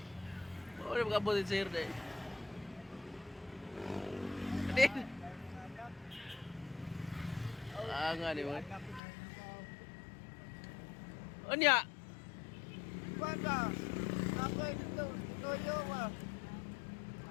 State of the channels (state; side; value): drops out; right; at 9.0 s